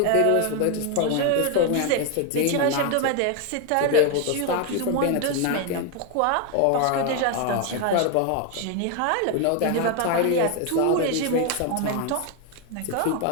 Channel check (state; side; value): different; both; correlation 0.01